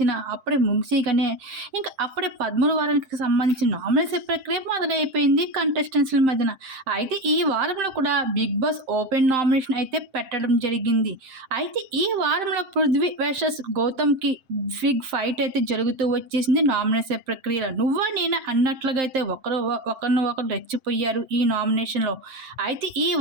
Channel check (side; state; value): left; late; 7.6 ms